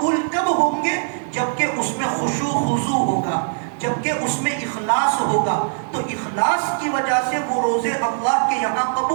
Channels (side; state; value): left; silent; digital silence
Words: کب ہوں گے؟ جبکہ اس میں خشوع خضوع ہوگا، جبکہ اس میں اخلاص ہوگا، تو اخلاص کی وجہ سے وہ روزے اللہ کے یہاں